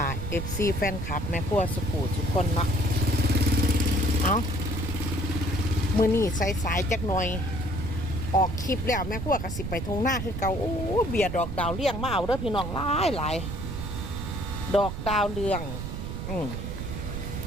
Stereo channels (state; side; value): noise; right; rumble, 5 dB below the sound